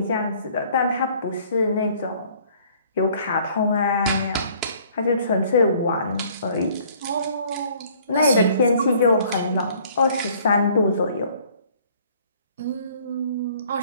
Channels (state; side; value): inverted; both; correlation -0.57